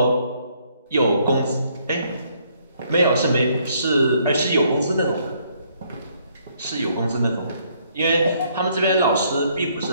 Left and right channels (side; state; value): both; inverted; correlation -0.68